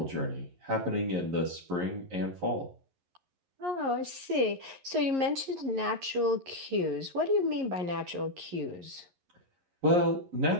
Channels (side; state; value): left; late; 11 ms